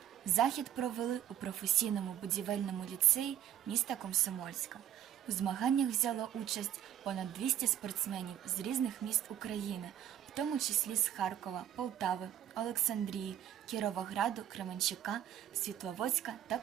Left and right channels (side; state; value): left; quieter; 10.9 dB